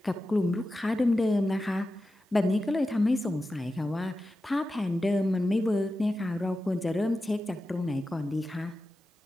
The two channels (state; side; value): normal; both; correlation 0.92